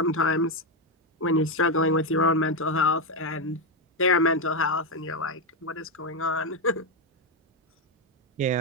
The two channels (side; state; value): both; normal; correlation 0.06